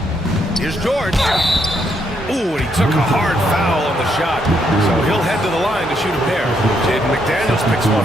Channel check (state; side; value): normal; both; correlation 0.75